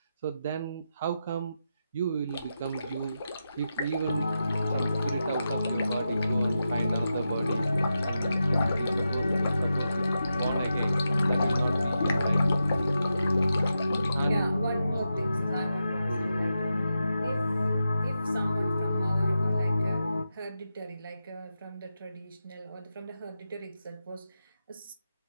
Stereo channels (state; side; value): inverted; both; correlation -0.88